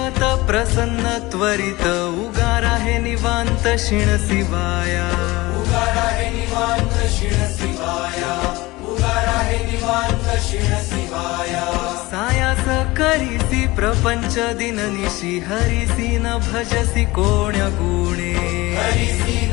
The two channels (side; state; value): right; quieter; 20.8 dB